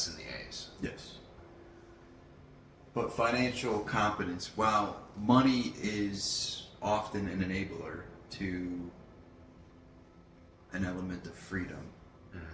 and the A's. Yes. But financial competence, while money is often an enabler to an element of freedom,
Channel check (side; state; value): both; identical; correlation 1.00